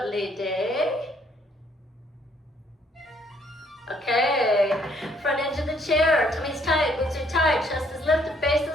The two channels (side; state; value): both; normal; correlation 0.66